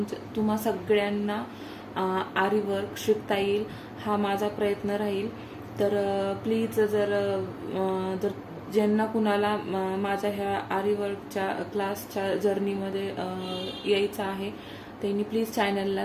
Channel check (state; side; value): identical; both; correlation 1.00